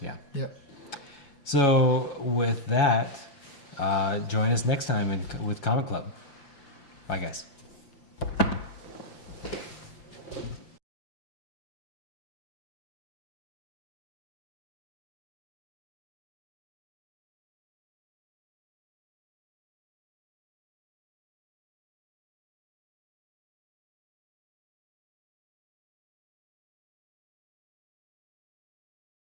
Yeah. Yep. So with that, join us next time with Comic Club. Bye, guys.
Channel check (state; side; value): late; right; 5.8 ms